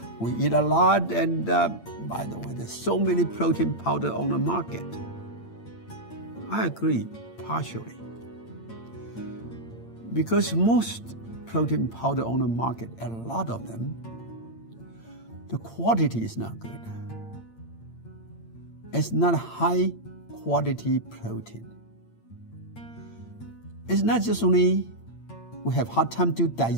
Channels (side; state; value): right; late; 8.8 ms